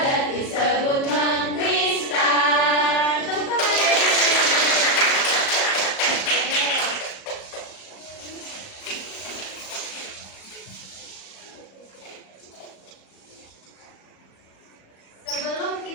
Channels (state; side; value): late; right; 37 ms